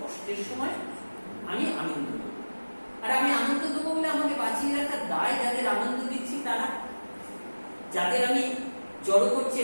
সময় আমি আনন্দ দেবো। আর আমি আনন্দ দেবো বলে আমাকে বাঁচিয়ে রাখার দায় যাদের আনন্দ দিচ্ছি তারা, যাদের আমি জড়ো করছে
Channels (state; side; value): inverted; both; correlation -1.00